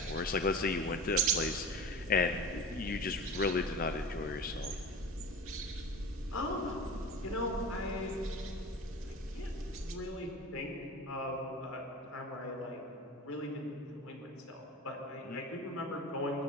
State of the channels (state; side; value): normal; both; correlation 0.34